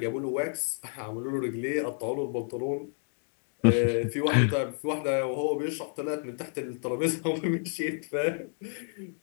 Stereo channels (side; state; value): right; silent; 58 dB below the other